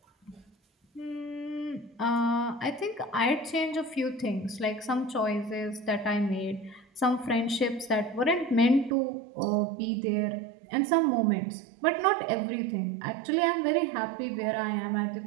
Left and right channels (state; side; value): drops out; left; at 8.9 s